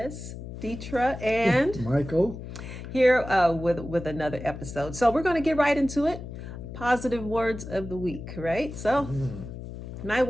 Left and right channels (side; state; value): left; noise; hum, 10 dB below the sound